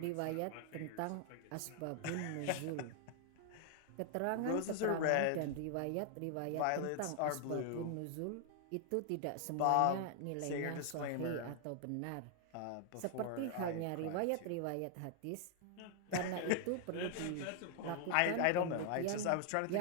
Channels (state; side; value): different; both; correlation 0.00